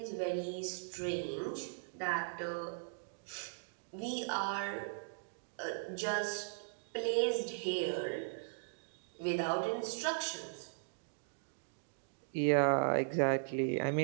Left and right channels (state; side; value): silent; left; digital silence